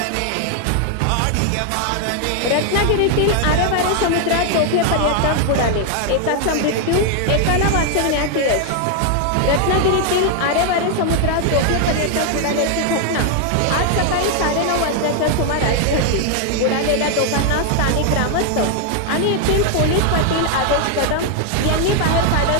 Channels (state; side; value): different; both; correlation 0.00